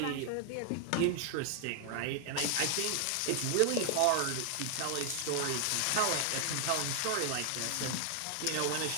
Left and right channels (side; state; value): both; different; correlation 0.00